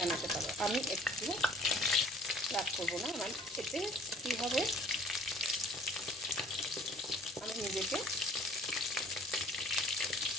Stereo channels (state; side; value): normal; both; correlation 0.52